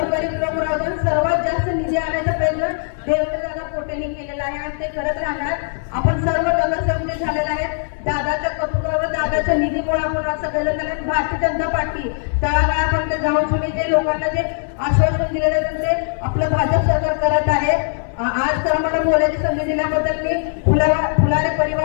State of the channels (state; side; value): silent; right; 59 dB below the other